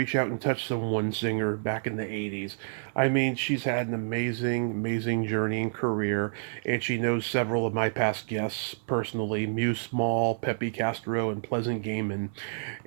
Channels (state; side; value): silent; left; 59 dB below the other